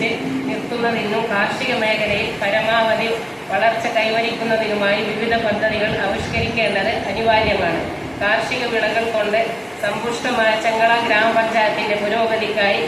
നിർത്തുന്നതിനും കാർഷിക മേഖലയിൽ പരമാവധി വളർച്ച കൈവരിക്കുന്നതിനുമായി വിവിധ പദ്ധതികൾ ആവിഷ്കരിക്കേണ്ടത് അനിവാര്യമാണ്. കാർഷിക വിളകൾ കൊണ്ട് സമ്പുഷ്ടമായ ചെങ്കള ഗ്രാമപഞ്ചായത്തിന്റെ പുരോഗതിക്കായി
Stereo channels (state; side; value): identical; both; correlation 1.00